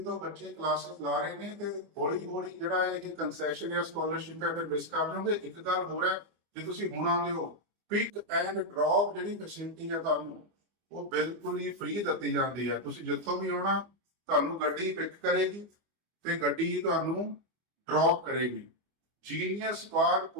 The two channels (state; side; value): late; left; 24 ms